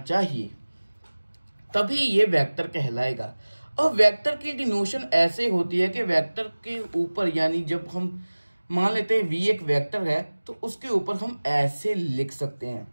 तभी ये वेक्टर कहलाएगा। अब वेक्टर की डिनोशन ऐसे होती है कि वेक्टर के ऊपर यानी जब हम मान लेते हैं V एक वेक्टर है तो उसके ऊपर हम ऐसे लिख सकते हैं।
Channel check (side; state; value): both; inverted; correlation -1.00